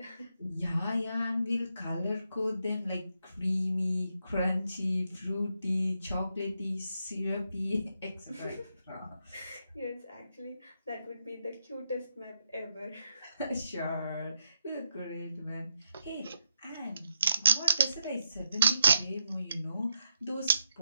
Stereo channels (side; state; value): both; inverted; correlation -0.82